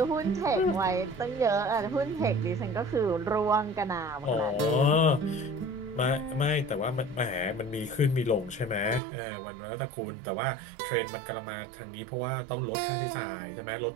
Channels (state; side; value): drops out; left; at 9.0 s